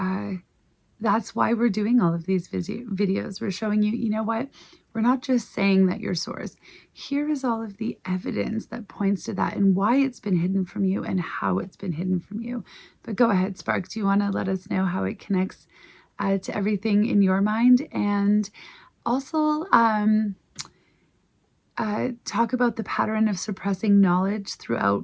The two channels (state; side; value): identical; both; correlation 1.00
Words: that's why we're doing all of these videos. We're showing you, you know what? We're not just saying that you're source. Here is all of the evidence that points to that and why it's been hidden from you and how it's been hidden from you. But go ahead, Spark. Do you want to let us know how it connects to everything in your mind? And also talk about the pattern of suppressing knowledge throughout